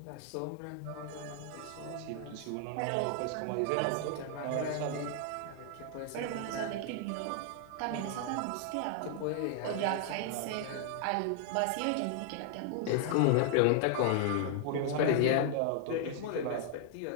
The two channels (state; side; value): different; both; correlation 0.00